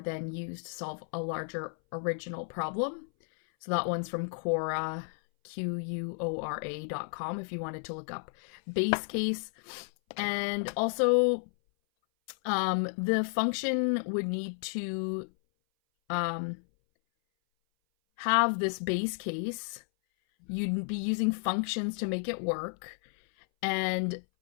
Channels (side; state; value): right; silent; 56 dB below the other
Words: used to solve a larger original problem. So that one's from Quora, Quora.com, if you wanted to look up base case. And also, the function would need to have this base case. You'd be using functions to make it work. And